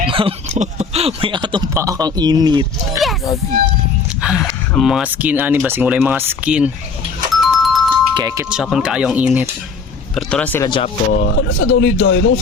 May atong pa akong init. Yes! Ang mga skin, basing wala yung mga skin. Kekit Japon kaayo ang init. Pero tura sila Japon. Ano sa daw ni Doy?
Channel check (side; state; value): right; quieter; 4.8 dB